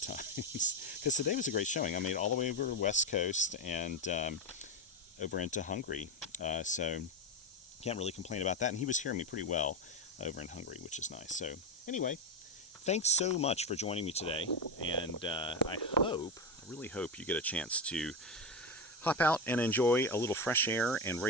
times. Because today was a great showing. I made it all the way over West Coast and over into Hungary. So can't really complain about that. And he was hearing me pretty well over in Hungary, which is nice. So anyway, thanks so much for joining me today. And I really hope you get a chance to hop out and enjoy a little fresh air and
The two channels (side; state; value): both; normal; correlation 0.13